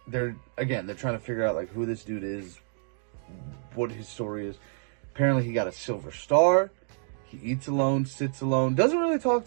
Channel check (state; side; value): silent; left; digital silence